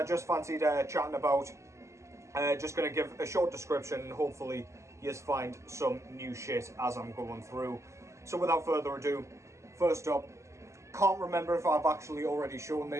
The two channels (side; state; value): left; late; 0.14 ms